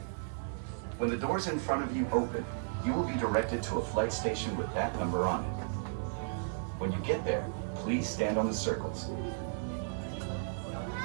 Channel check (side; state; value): left; silent; digital silence